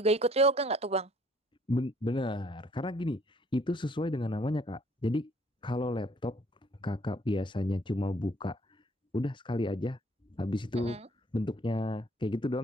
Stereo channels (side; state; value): both; normal; correlation 0.61